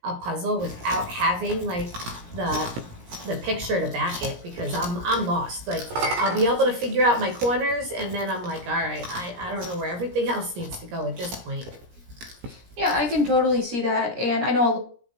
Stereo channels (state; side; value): late; left; 17 ms